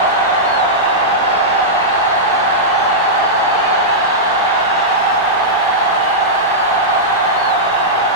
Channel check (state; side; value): normal; both; correlation -0.11